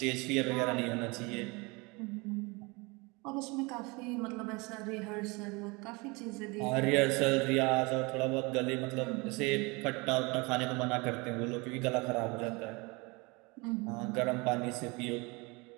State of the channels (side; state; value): left; quieter; 26.9 dB